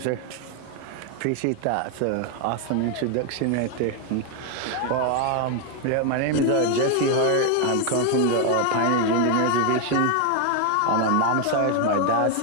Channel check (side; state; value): both; different; correlation 0.01